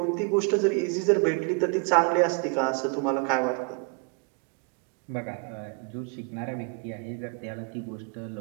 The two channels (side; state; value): left; quieter; 32.4 dB